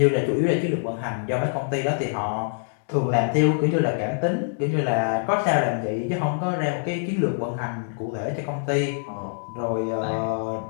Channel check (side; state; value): right; silent; digital silence